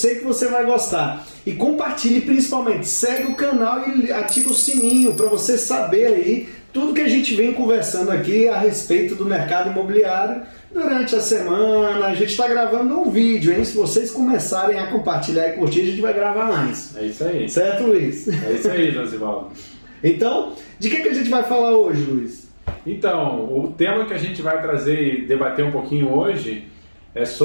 que você vai gostar. E compartilhe principalmente, segue o canal e ativa o sininho para você saber aí tudo que a gente vem conversando aqui a respeito do mercado imobiliário. Durante a semana, a gente está gravando um vídeo, hein? Se vocês começarem a compartilhar e curtir, a gente vai gravar mais. É isso aí. Certo, Luiz? É isso aí, Josivaldo. Então, de que a gente vai falar hoje, Luiz? Então, o tema que a gente vai trazer e debater um pouquinho hoje é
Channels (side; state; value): both; inverted; correlation -1.00